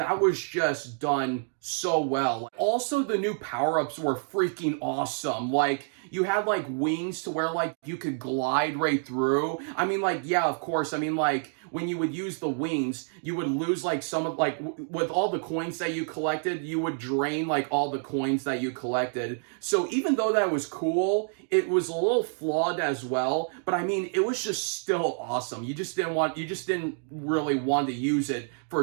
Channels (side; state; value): left; silent; 59 dB below the other